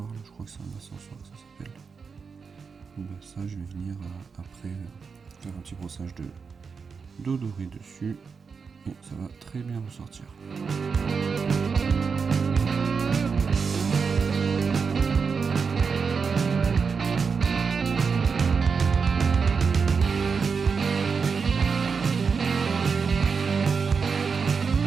je crois que c'est un ascensoir que ça s'appelle. Ça, je vais venir après faire un petit brossage de doré dessus. Et ça va très bien ressortir.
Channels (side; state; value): left; quieter; 5.5 dB